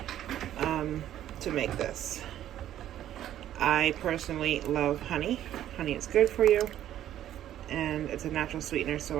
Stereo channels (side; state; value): left; quieter; 11.8 dB